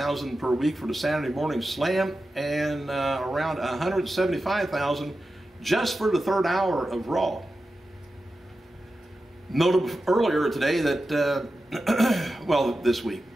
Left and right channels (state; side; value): normal; both; correlation 0.92